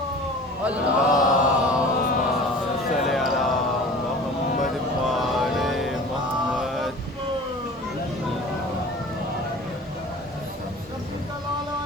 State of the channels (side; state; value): both; normal; correlation 0.41